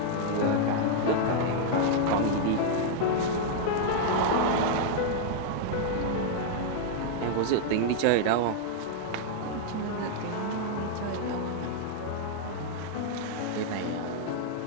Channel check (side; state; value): both; different; correlation -0.01